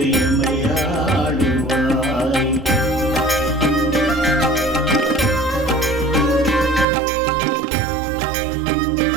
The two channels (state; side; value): drops out; left; at 6.9 s